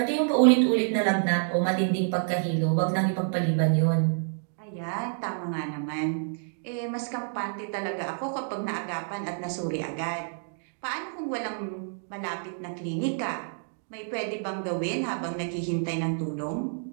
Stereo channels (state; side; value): silent; left; digital silence